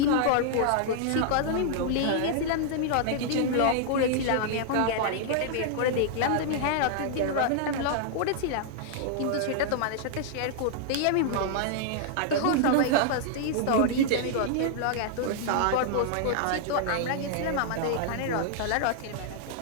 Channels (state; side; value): different; both; correlation -0.01